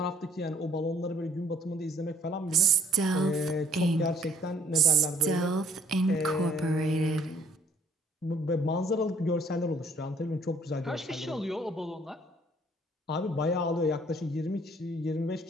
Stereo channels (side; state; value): both; normal; correlation 0.61